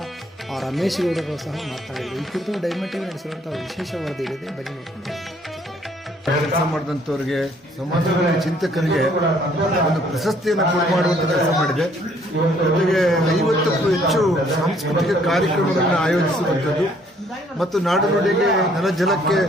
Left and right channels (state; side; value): normal; both; correlation 0.63